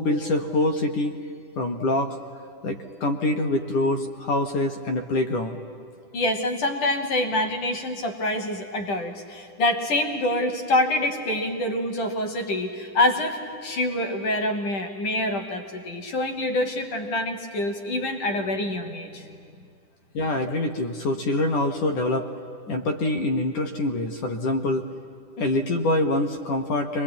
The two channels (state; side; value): late; right; 10 ms